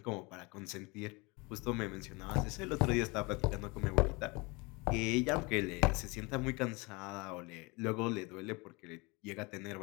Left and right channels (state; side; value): quieter; right; 26.8 dB